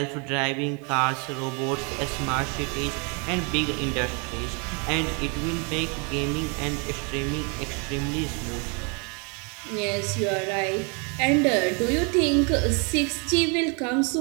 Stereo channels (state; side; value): quieter; left; 34.6 dB